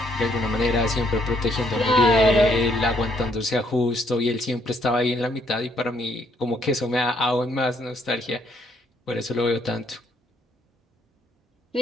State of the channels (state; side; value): normal; both; correlation 0.69